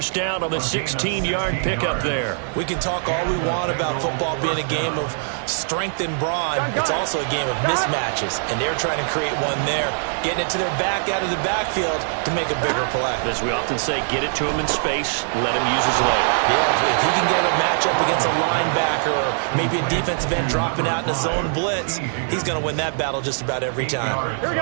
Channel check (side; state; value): left; silent; digital silence